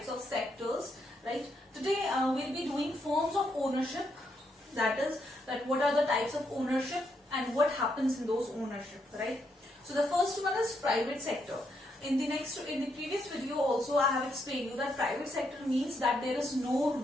of sectors, right? Today we'll be doing forms of ownership, that is, that what are the types of ownership and what happens in those ownership, right? So the first one is private sector. In the previous video also I have explained you that private sector means that there is no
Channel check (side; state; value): both; normal; correlation 0.78